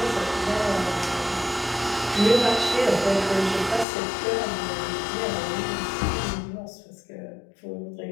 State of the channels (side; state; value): right; drops out; at 3.9 s